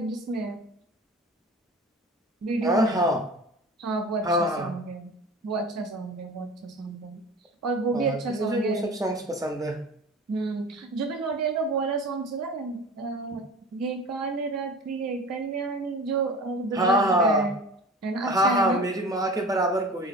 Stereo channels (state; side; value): normal; both; correlation 0.38